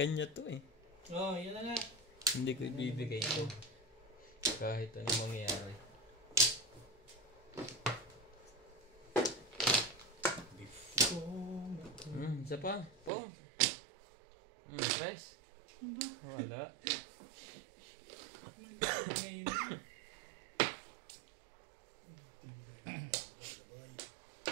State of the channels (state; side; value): drops out; left; at 13.1 s